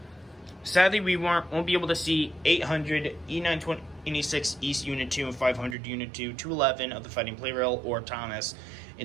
Sadly, we won't be able to see 800, E926 East Unit 2, and 500 Unit 2, 211 of the Fighting Plarail, or Thomas in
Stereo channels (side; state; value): left; drops out; at 5.8 s